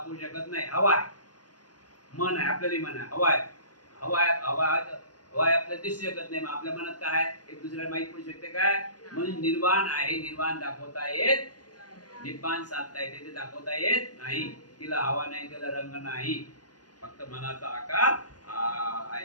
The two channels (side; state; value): right; late; 0.69 ms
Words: शकत नाही. हवा आहे, मन आहे, आपल्याला मन आहे, हवा आहे, हवा आहे आपल्याला दिसू शकत नाही. मग आपल्या मनात काय आहे एक दुसऱ्याला माहित पडू शकते काय? म्हणून निर्वाण आहे, निर्वाण दाखवता येत निब्बाण साधता येते ते दाखवता येत नाही. तिला हवा नाही, तिला रंग नाही, फक्त मनाचा आकार